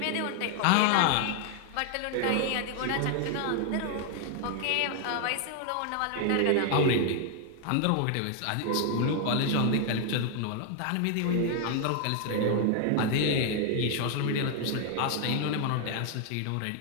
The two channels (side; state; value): both; different; correlation 0.00